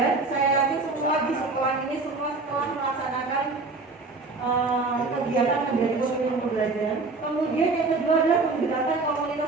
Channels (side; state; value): left; quieter; 3.8 dB